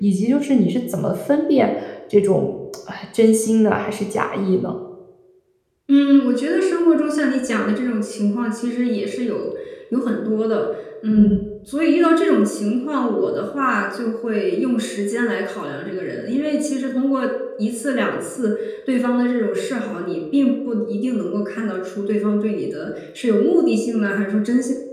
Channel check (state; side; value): identical; both; correlation 1.00